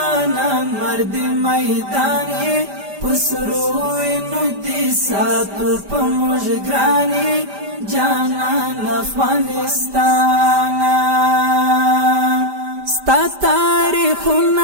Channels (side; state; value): left; late; 5.0 ms